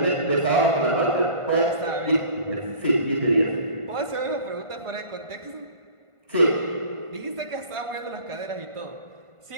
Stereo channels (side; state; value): left; late; 1.5 ms